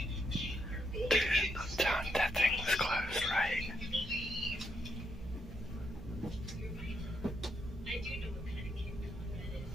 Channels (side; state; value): both; normal; correlation 0.78